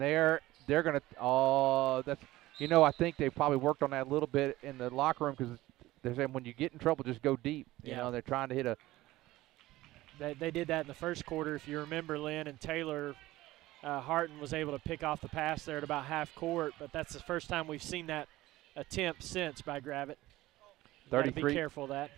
going to that's I think they probably worked on that a little bit in the locker room because they're saying when you get in trouble, just go deep. You know, they're trying to hit a They did that in the first quarter, if you remember, Lynn, and Taylor Harton was able to pick off the pass there at about half court, but that's the first time we've seen that attempt since by Gravette. Be careful of that.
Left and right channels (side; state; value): left; quieter; 17.3 dB